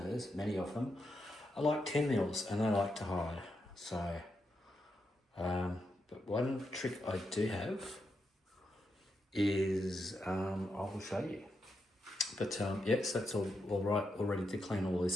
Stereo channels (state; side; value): normal; both; correlation 0.84